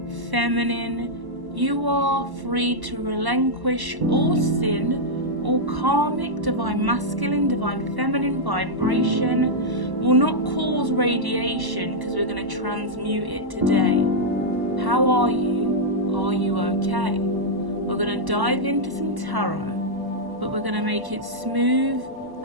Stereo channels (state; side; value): late; left; 1.0 ms